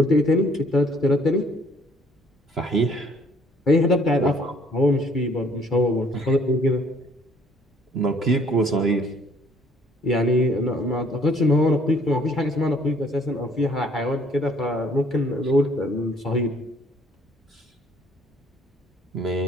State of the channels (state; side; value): normal; both; correlation 0.60